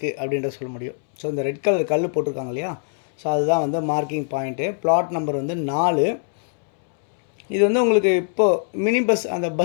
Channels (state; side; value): silent; right; 64 dB below the other